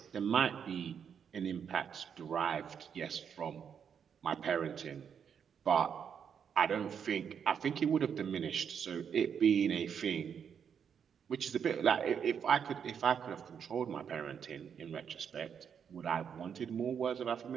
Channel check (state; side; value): quieter; left; 7.5 dB